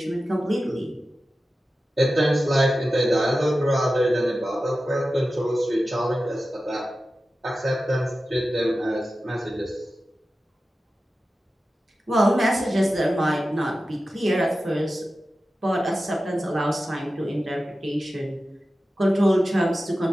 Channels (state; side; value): normal; both; correlation 0.94